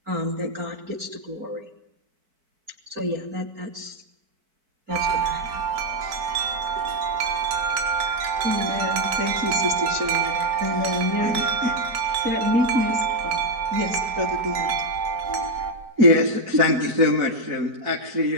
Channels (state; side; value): late; left; 4.5 ms